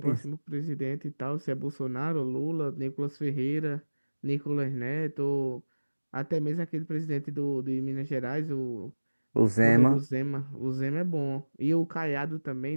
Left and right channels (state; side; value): inverted; both; correlation -1.00